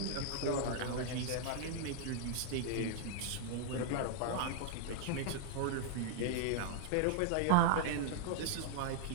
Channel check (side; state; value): both; different; correlation -0.01